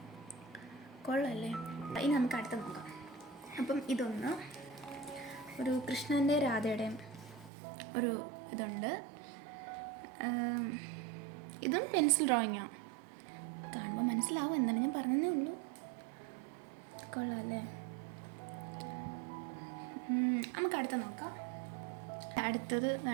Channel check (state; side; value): drops out; left; at 7.5 s